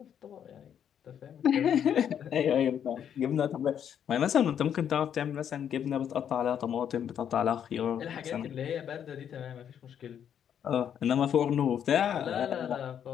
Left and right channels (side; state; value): right; quieter; 8.9 dB